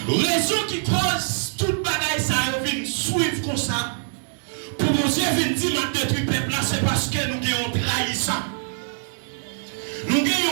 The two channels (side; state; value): left; silent; 63 dB below the other